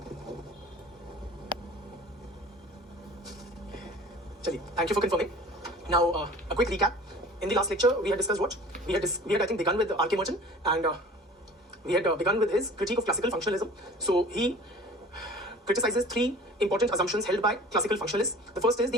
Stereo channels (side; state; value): both; normal; correlation 0.43